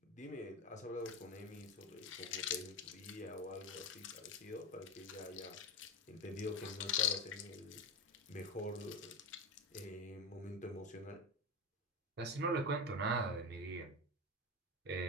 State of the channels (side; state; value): both; normal; correlation 0.19